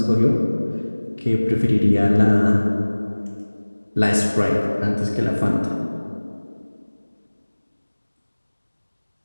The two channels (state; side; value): inverted; both; correlation -1.00